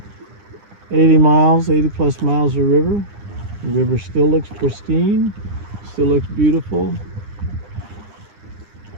80 miles, 80 plus miles of river. The river still looks pristine, still looks beautiful,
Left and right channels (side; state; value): left; late; 9.9 ms